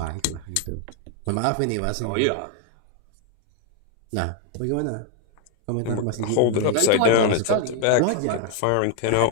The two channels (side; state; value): both; different; correlation 0.01